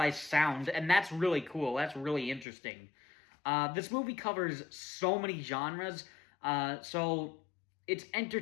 sound, and that's really cool. That's really interesting. This movie covers so many genres, so it's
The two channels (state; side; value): drops out; right; at 2.5 s